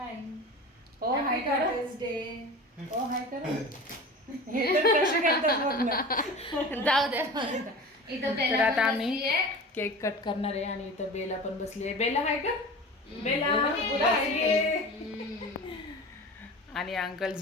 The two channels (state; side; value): normal; both; correlation 0.34